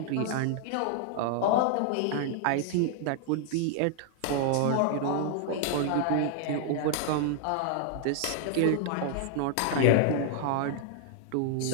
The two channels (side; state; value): both; different; correlation 0.00